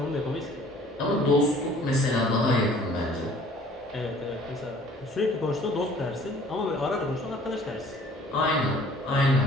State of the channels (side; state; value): both; normal; correlation 0.53